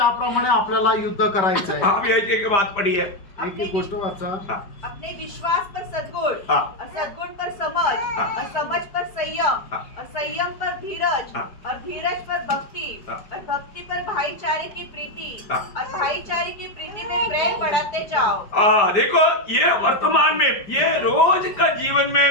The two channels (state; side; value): late; right; 5.1 ms